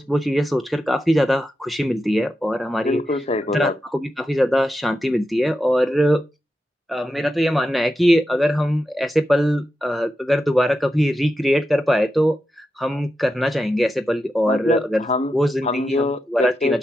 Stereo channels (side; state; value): both; normal; correlation 0.89